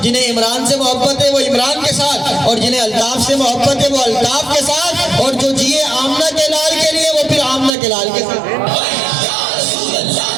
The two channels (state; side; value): drops out; left; at 7.7 s